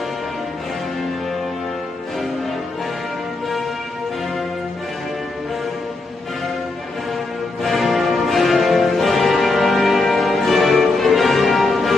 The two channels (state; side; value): quieter; right; 3.2 dB